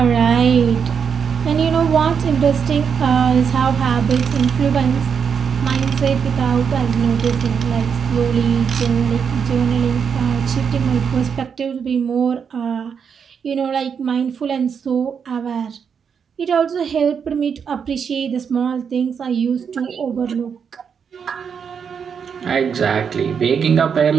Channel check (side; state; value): left; quieter; 6.8 dB